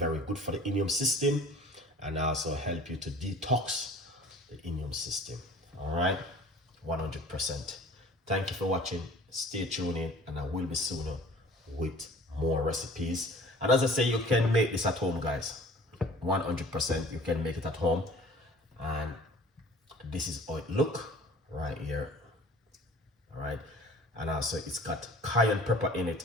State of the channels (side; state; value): both; normal; correlation 0.48